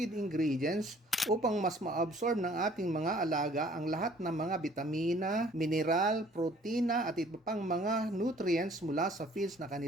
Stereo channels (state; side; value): normal; both; correlation 0.56